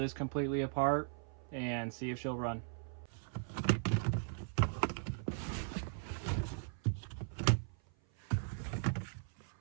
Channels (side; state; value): left; silent; 52 dB below the other